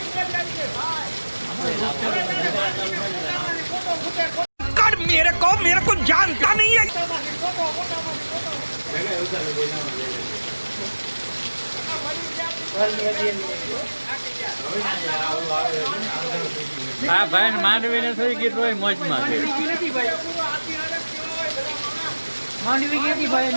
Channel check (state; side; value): inverted; both; correlation -1.00